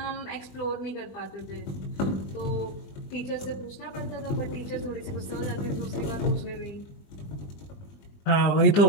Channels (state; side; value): late; right; 20 ms